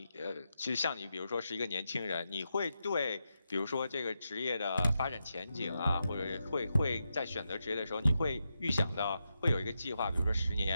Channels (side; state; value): both; inverted; correlation -0.87